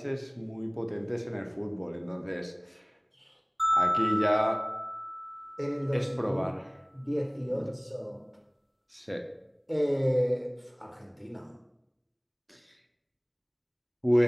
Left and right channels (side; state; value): both; identical; correlation 1.00